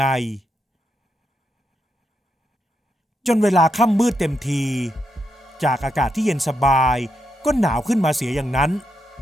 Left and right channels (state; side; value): normal; both; correlation 0.82